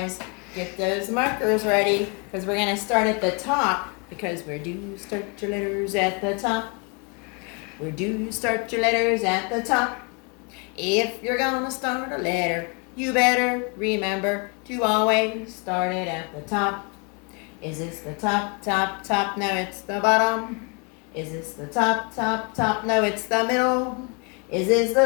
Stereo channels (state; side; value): quieter; right; 33.4 dB